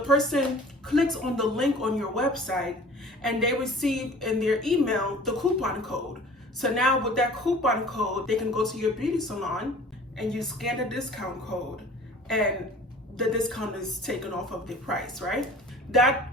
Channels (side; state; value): both; normal; correlation 0.46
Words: person clicks on the link on your website and they receive in their email the coupon code. So now with that coupon code, they can go to your beauty salon and you scan the discount code and the discount is taken off of the price, right? That